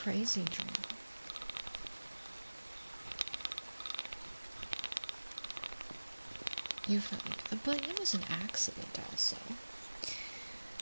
dream. You felt like, but it was an accident also.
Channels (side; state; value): both; inverted; correlation -1.00